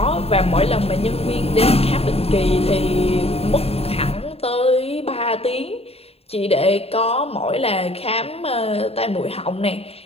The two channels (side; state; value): right; late; 0.29 ms